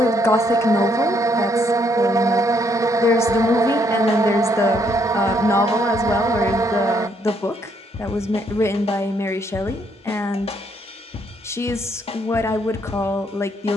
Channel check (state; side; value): normal; both; correlation 0.71